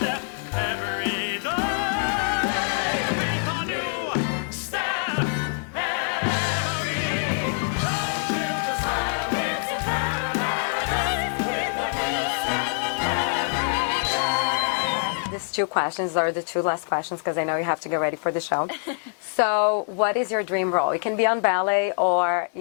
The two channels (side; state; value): right; silent; digital silence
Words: Two questions are the two last questions because I know you have to get ready for the show. So what is your dream role? It can be on ballet or